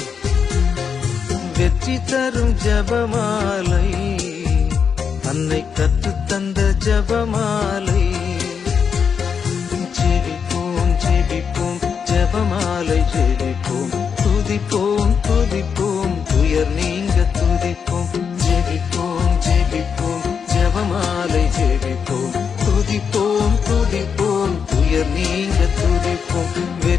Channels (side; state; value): right; quieter; 6.6 dB